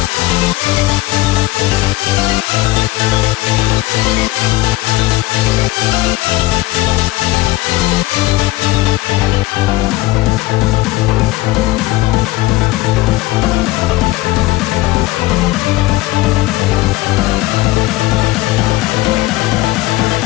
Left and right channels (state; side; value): quieter; right; 18.6 dB